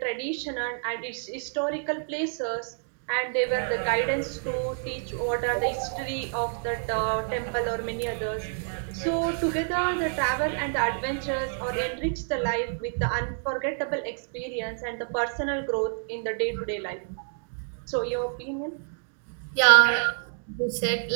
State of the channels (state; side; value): silent; left; digital silence